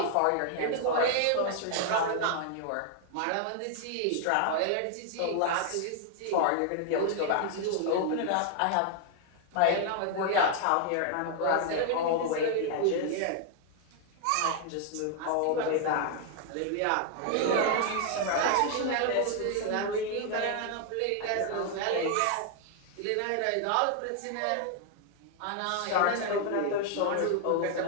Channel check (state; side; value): different; both; correlation 0.00